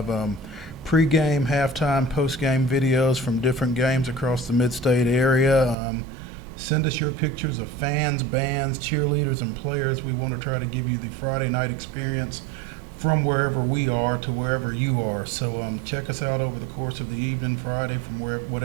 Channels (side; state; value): left; drops out; at 5.8 s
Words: pregame, halftime, postgame videos from different games across the mid-state area. Send us your pictures of fans, bands, cheerleaders, and players. We want to try to give you the Friday night experience from wherever we are to wherever you are. So check us out over the course of the evening Friday from